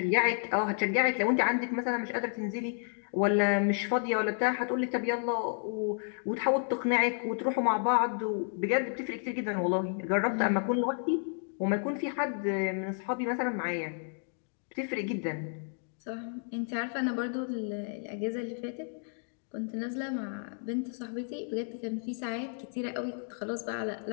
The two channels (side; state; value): right; silent; 57 dB below the other